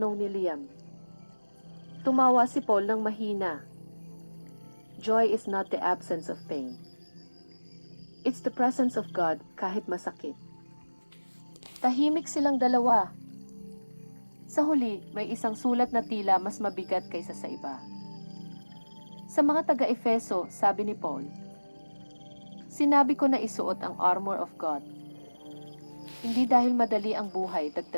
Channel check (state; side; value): inverted; both; correlation -1.00